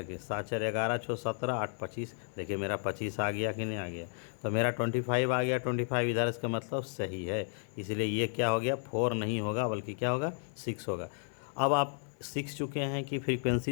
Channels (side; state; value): right; silent; 56 dB below the other